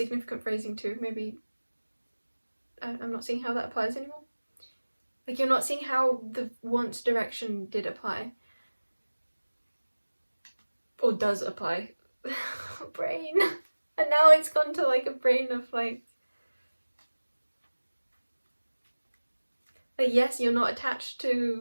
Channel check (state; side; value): inverted; both; correlation -1.00